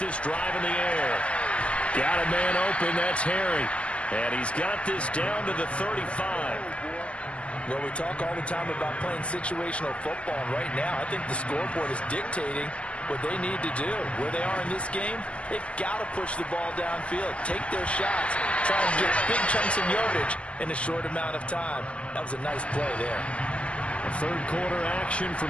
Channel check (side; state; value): right; late; 0.058 ms